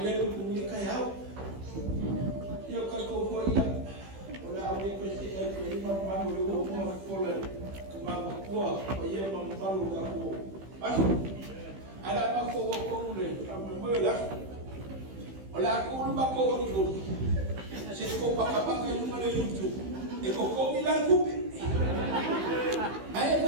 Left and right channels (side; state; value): left; late; 15 ms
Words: ni kaya. Ya, kalau kau ya. Orang awak pasti imam mahu rumah sekolah kemana kuah, ia membalu kaku. Masuk. Ada apa kau boleh? Kamu melihat? Oleh aku lupa kau itu. Sesuatu pakai yang mana itu? Kau bilang kupi. Ayah